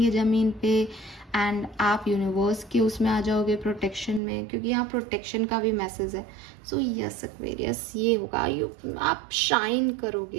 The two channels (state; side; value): drops out; left; at 4.2 s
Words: ज़मीन पे, एंड आप यूनिवर्स के उसमें आ जाओगे प्रोटेक्शन में, क्योंकि यहाँ प्रोटेक्शन का भी मैसेज है। सो यस एक्वेरियस, ये होगा आप शाइन